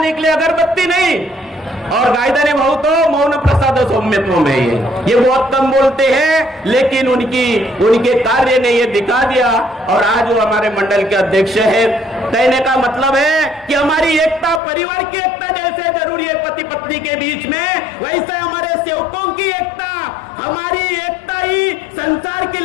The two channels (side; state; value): right; drops out; at 14.6 s